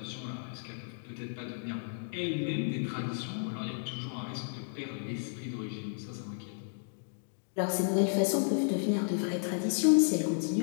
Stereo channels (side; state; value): right; silent; digital silence